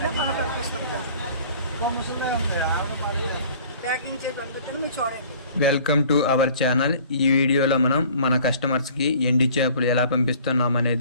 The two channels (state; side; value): inverted; both; correlation -0.50